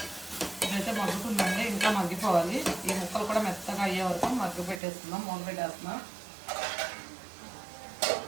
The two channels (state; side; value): drops out; left; at 4.8 s